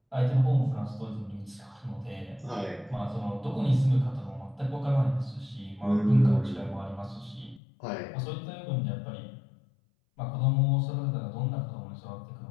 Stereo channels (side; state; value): right; drops out; at 7.6 s